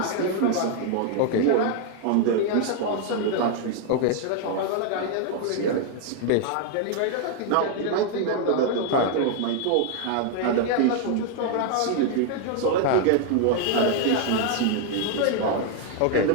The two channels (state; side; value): different; both; correlation 0.00